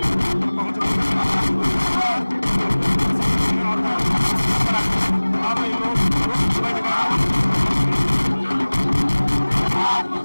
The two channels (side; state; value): both; inverted; correlation -1.00